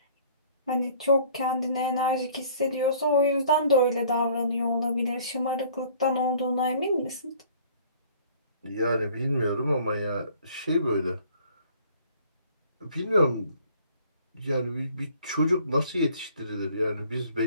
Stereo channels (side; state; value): both; inverted; correlation -0.54